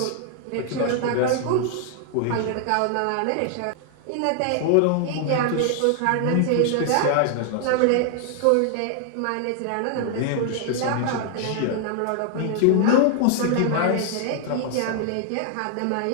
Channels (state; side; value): different; both; correlation 0.00